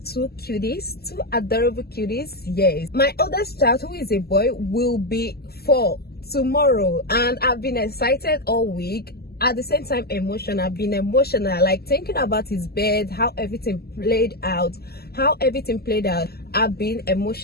two cuties, two adorable cuties. Yes, my oldest child, who is a boy, will be 4 tomorrow, and I've been excited all week. At the same time, emotional. I've been emotional, like thinking about his bed, how everything played out. I've been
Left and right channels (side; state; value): right; late; 0.46 ms